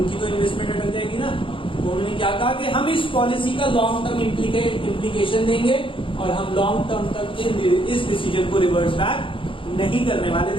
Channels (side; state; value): right; late; 0.25 ms